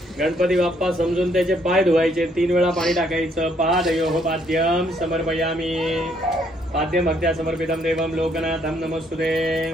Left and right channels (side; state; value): both; normal; correlation 0.69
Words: गणपती बाप्पा समजून त्याचे पाय धुवायचे। 3 वेळा पाणी टाकायचं। पादयोः पाद्यं समर्पयामी। पाद्यं भक्त्या समर्पितं देवं लोकनाथं नमस्तुते।